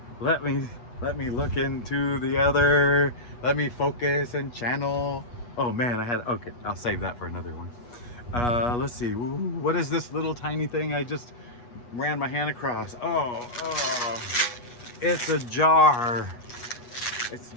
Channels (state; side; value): late; right; 8.3 ms